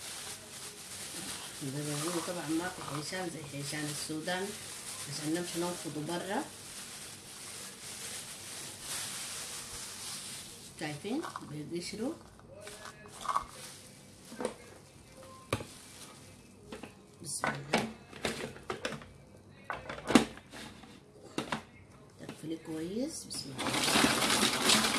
طبعا ما في حيشان زي حيشان السودان عشان نمشي ننفضه برا. شايفين بيقشروا. بسم الله، تقفلي كويس. بسم الله.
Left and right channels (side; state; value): both; identical; correlation 1.00